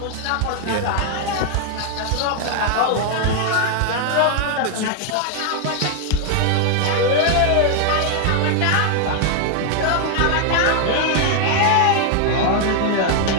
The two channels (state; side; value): different; both; correlation 0.00